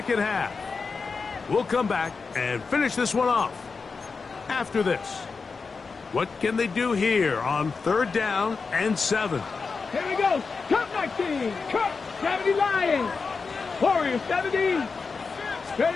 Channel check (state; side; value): quieter; right; 4.7 dB